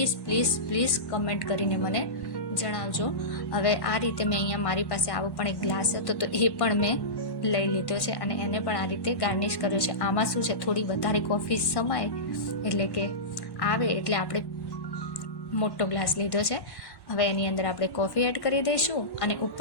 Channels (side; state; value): right; late; 1.1 ms